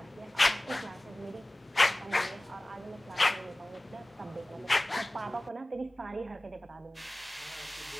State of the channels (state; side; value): normal; both; correlation 0.98